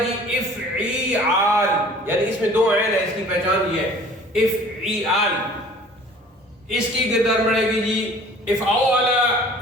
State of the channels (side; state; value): both; normal; correlation 0.49